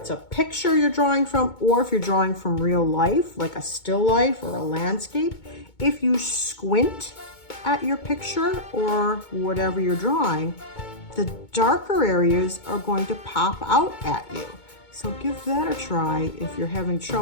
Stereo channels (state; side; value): late; right; 2.2 ms